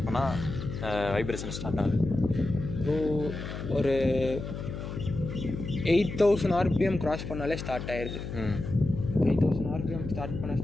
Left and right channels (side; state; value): left; noise; hum, 7 dB below the sound